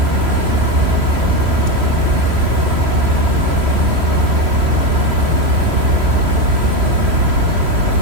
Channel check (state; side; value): late; left; 3.1 ms